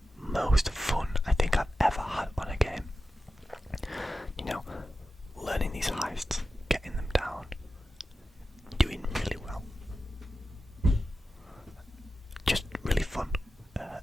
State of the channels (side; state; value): both; normal; correlation 0.93